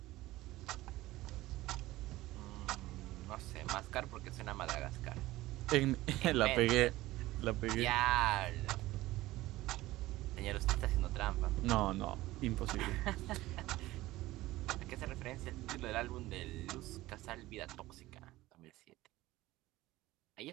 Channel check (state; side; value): quieter; left; 17.4 dB